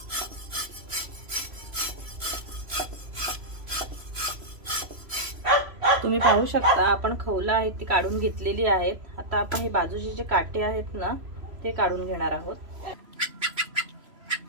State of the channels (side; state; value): left; late; 3.0 ms